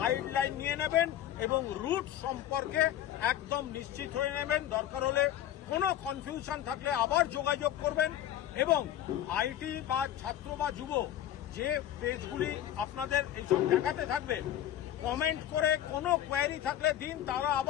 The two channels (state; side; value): quieter; right; 11.7 dB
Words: নিয়ে নেবেন এবং রুট সম্পর্কে একদম নিশ্চিত হয়ে নেবেন। দরকার হলে কোনো কনফিউশন থাকলে আবার যোগাযোগ করবেন। এবং আইটি বা ছাত্র বা যুব যে পেজগুলি আপনাদের এইসব দেখাতে থাকবে, কমেন্ট করে কোনো কোয়ারি থাকলে দিন, তারা